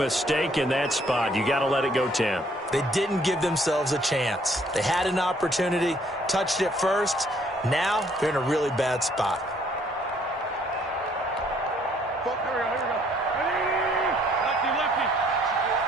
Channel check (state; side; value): normal; both; correlation 0.64